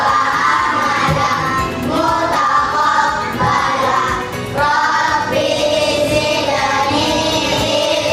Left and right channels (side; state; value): both; identical; correlation 1.00